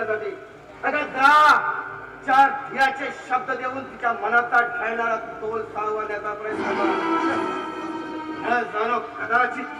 अगं जा. 4 धीराचे शब्द देऊन तिच्या मनाचा ढळणारा तोल सावरण्याचा प्रयत्न कर. जाणो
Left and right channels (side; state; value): both; identical; correlation 1.00